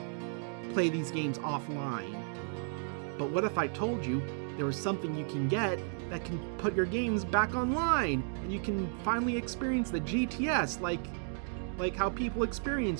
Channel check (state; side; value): silent; left; 55 dB below the other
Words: play these games offline. But what if I told you there was something you can get that can put your games back online, and you can finally experience the GTS like how people